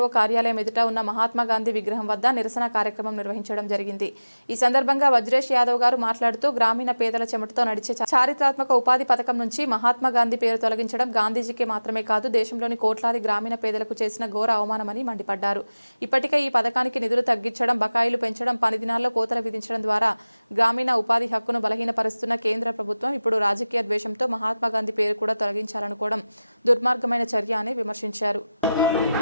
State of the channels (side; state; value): both; inverted; correlation -0.97